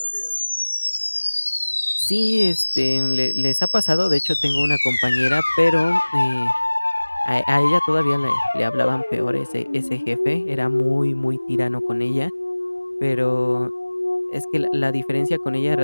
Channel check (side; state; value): both; inverted; correlation -1.00